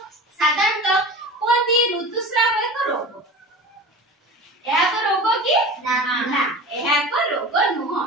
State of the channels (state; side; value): normal; both; correlation 0.35